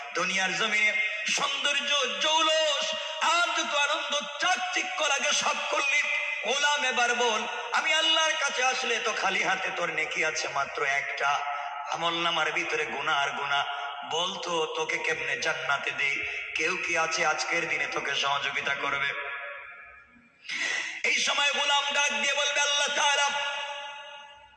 দুনিয়ার জমিনে সৌন্দর্য জৌলস আর যত আনন্দ চাকচিক্য লাগে সব করলি। গোলাম এবার বল আমি আল্লাহর কাছে আসলে তো খালি হাতে, তোর নেকি আছে মাত্র একটা, আমলনামার ভিতরে গুনাহ আর গুনাহ। বলতো তোকে কেমনে জান্নাতে দেই? কেউ কি আছে আজকের দিনে তোকে সহযোগিতা করবে? এই সময় গোলাম ডাক দিয়ে বলবে আল্লাহ তাআলা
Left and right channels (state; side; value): identical; both; correlation 1.00